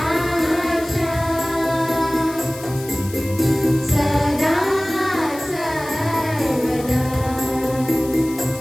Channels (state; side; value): noise; left; hiss, 16 dB below the sound